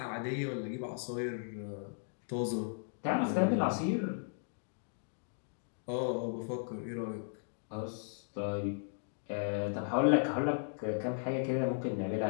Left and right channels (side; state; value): right; silent; digital silence